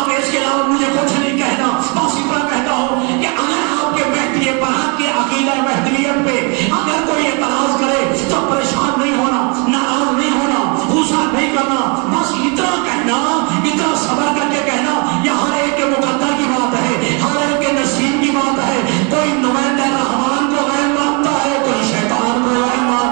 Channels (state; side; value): quieter; left; 33.9 dB